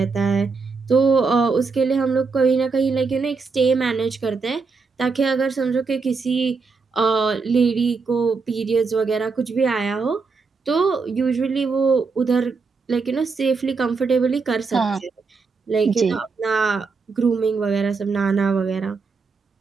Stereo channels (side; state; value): left; quieter; 4.6 dB